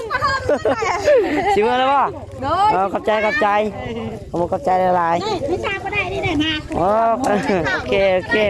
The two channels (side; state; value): both; identical; correlation 1.00